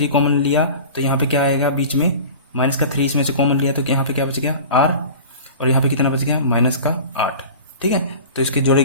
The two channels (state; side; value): inverted; both; correlation -0.37